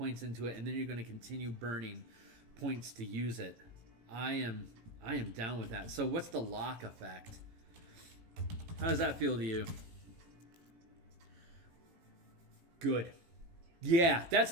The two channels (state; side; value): late; left; 18 ms